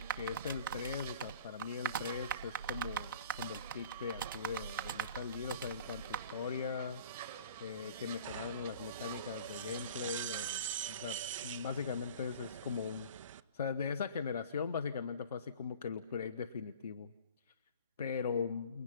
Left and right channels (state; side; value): inverted; both; correlation -0.45